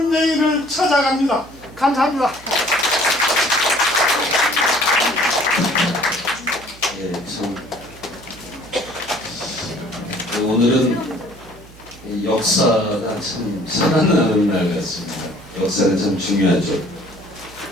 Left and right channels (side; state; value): right; noise; hum, 22 dB below the sound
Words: 찾아갑니다. 감사합니다. 예, 참 오늘은 역사가 참 살아나는 날 같습니다. 역사는 참 중요하죠.